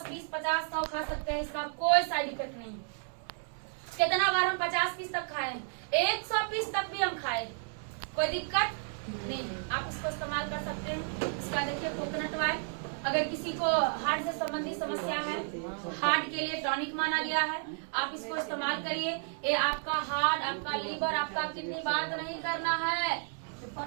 20, 50, 100 खा सकते हैं, इसका कोई साइड इफेक्ट नहीं। कितना बार हम 50 पीस तक खाए, 100 पीस तक भी हम खाए, कोई दिक्कत नहीं। आप इसको इस्तेमाल कर सकते हैं। इसका देखिए कोकोनट ऑयल, अगर किसी को हार्ट से संबंधित समस्या है, हार्ट के लिए टॉनिक माना गया है, आप इसको इस्तेमाल करिए। ये आपका हार्ट, आपका लीवर, आपका किडनी, बात नहीं करना है।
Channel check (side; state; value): left; silent; 56 dB below the other